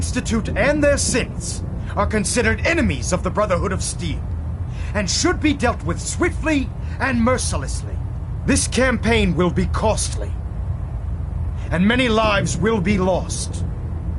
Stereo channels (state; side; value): identical; both; correlation 1.00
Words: and their synths are considered enemies of the Brotherhood of Steel, and should be dealt with swiftly and mercilessly. This campaign will be costly, and many lives will be lost.